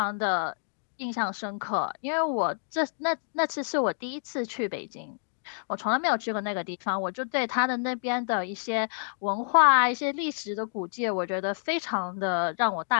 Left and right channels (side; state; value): right; silent; digital silence